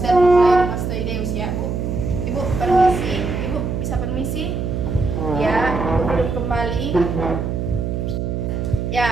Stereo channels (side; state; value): right; noise; hum, 2 dB below the sound